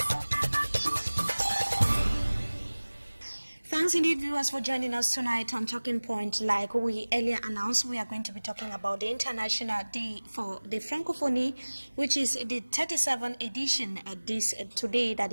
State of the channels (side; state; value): both; inverted; correlation -1.00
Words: Thanks indeed, viewers, for joining us tonight on Talking Point. Like we earlier announced, we are going to be talking about the International Day for the Francophonie, which is the 37th edition today that